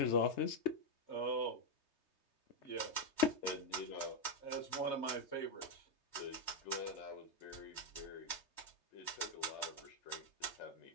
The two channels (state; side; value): late; right; 3.3 ms